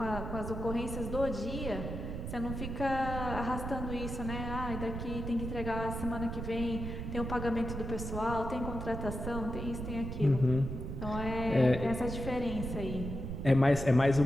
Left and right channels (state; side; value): noise; right; rumble, 5 dB below the sound